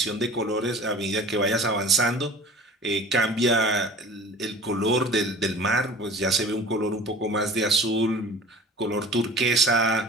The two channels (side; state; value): both; normal; correlation 0.43